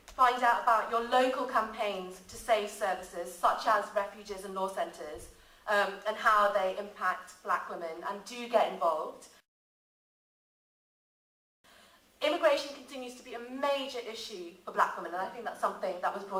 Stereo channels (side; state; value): both; identical; correlation 1.00